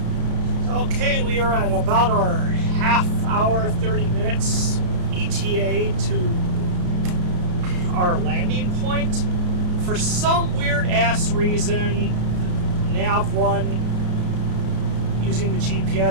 Okay, we are at about our half hour, 30 minutes ETA to our landing point. For some weird ass reason, nav 1 using the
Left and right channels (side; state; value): left; late; 33 ms